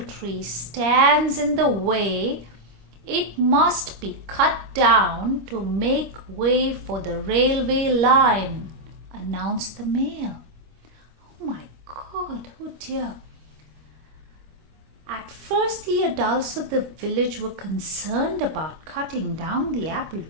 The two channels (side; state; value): left; late; 25 ms